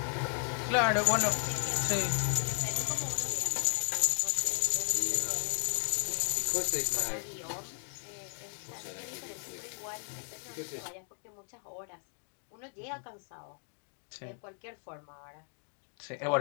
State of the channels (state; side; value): silent; right; 55 dB below the other